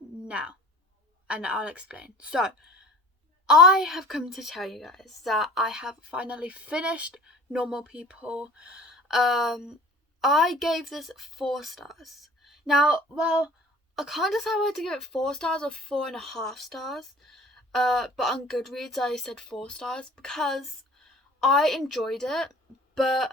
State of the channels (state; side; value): normal; both; correlation 0.45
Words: and I'll explain. So I have come to tell you guys that I have finally finished Normal People. I gave this 4 stars. Now, well, I can't decide whether to give it 4 stars or 4.5 stars. But on Goodreads I said 4 stars because I enjoyed it, but